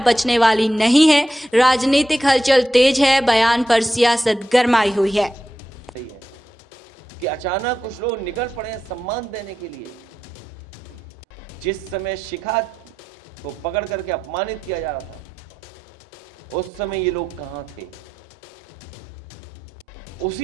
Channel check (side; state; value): both; normal; correlation 0.89